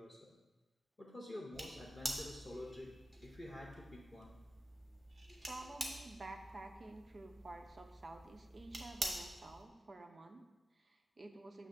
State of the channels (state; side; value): normal; both; correlation 0.93